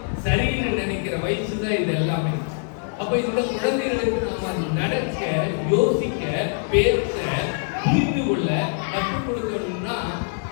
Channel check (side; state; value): right; silent; 63 dB below the other